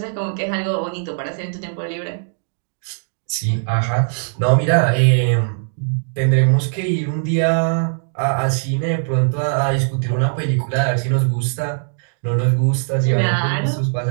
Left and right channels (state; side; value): silent; left; digital silence